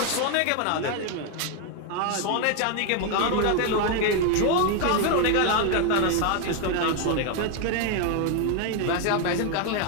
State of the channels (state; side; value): different; both; correlation 0.01